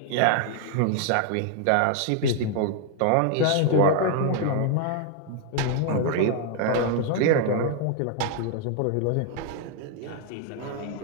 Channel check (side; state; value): both; different; correlation 0.00